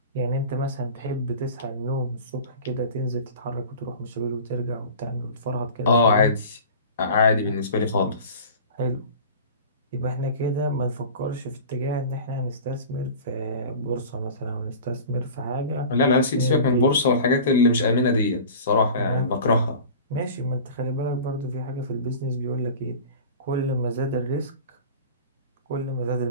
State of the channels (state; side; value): inverted; both; correlation -0.38